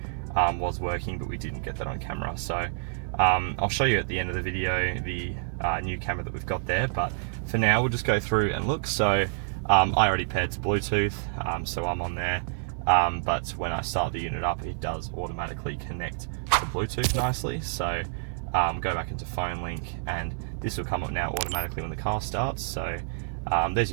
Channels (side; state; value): left; silent; digital silence